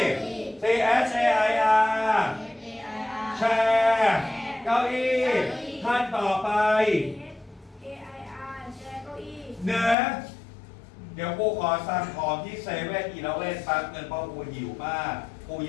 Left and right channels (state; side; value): drops out; right; at 10.0 s